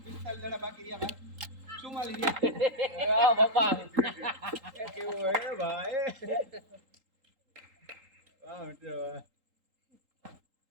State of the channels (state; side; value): late; left; 3.8 ms